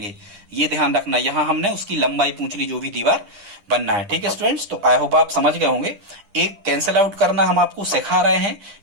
ये ध्यान रखना, यहां हमने उसकी लंबाई पूछ ली जो भी दीवार बनना है, ठीक है स्टूडेंट्स। तो आई होप आप समझ गए होंगे। एक कैंसिल आउट करना हम आपको सिखा रहे हैं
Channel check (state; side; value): late; left; 10 ms